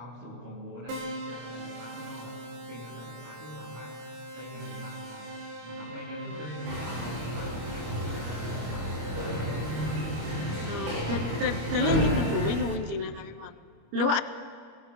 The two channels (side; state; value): left; late; 26 ms